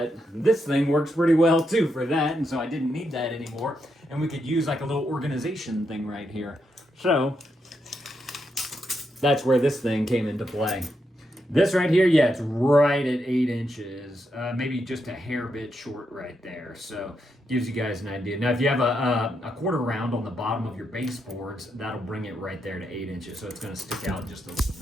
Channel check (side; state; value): both; normal; correlation 0.82